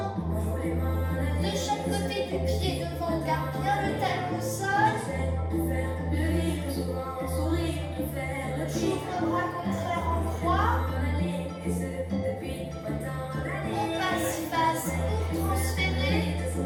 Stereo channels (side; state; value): both; identical; correlation 1.00